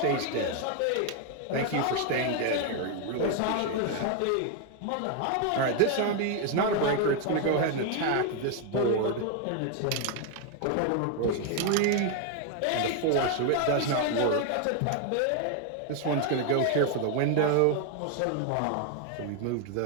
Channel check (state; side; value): different; both; correlation 0.01